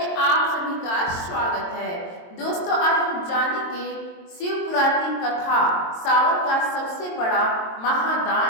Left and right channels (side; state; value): right; late; 22 ms